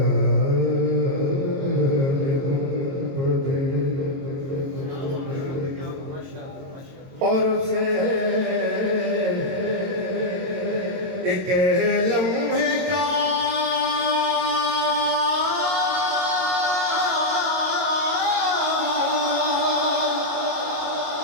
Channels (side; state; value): left; late; 22 ms